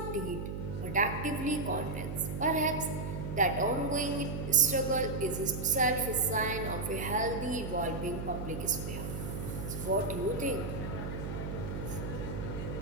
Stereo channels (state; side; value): noise; right; hum, 5 dB below the sound